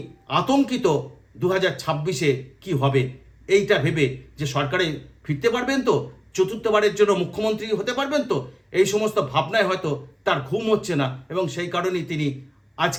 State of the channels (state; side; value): identical; both; correlation 1.00